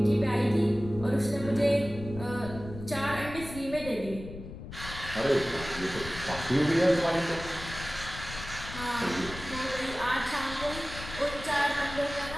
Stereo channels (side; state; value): left; noise; rumble, 12 dB below the sound